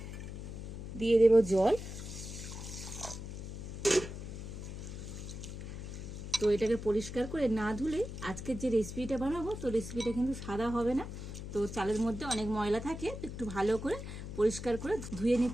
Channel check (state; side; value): noise; left; hum, 8 dB below the sound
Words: দিয়ে দেব জল। তো এটাকে পরিষ্কার করে না ধুলে আজকের যে রেসিপিটা বানাবো তো রেসিপিটা কিন্তু সাদা হবে না। তো চালের মধ্যে অনেক ময়লা থাকে, একটু ভালো করে পরিষ্কার করে ধুয়ে